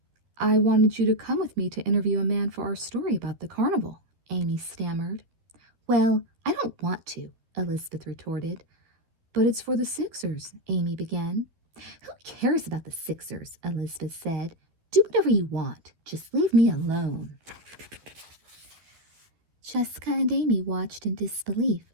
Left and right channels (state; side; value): late; left; 12 ms